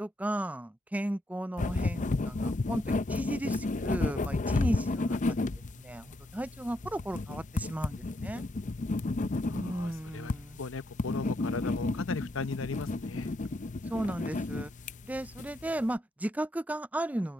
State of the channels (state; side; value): normal; both; correlation 0.78